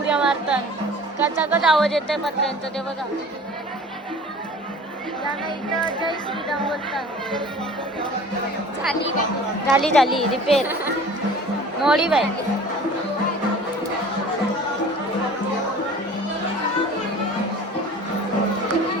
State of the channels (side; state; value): both; normal; correlation 0.43